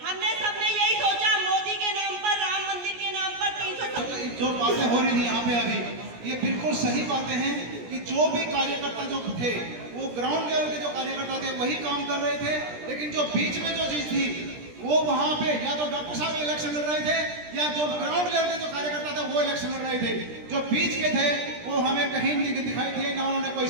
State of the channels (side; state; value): left; late; 17 ms